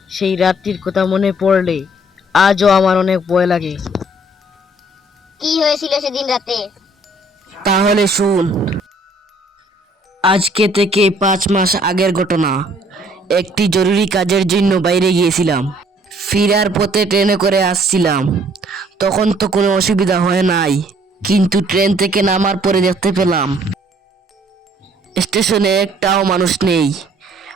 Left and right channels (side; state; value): both; normal; correlation 0.61